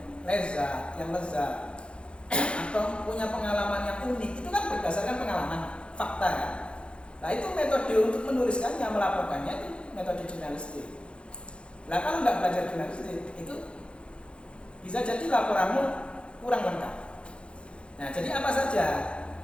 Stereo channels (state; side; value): late; right; 0.057 ms